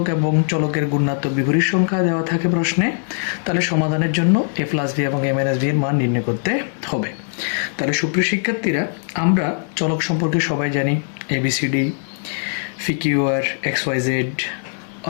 এবং চলকের গুণাত্মক বিপরীত সংখ্যা দেওয়া থাকে প্রশ্নে, তাহলে সমাধানের জন্য a+b এবং a-b এর মান নির্ণয় করতে হবে। তাহলে সুপ্রিয় শিক্ষার্থীরা, আমরা চলক সম্পর্কে সবাই জানি ABCD, PQR, XYZ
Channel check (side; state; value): right; silent; digital silence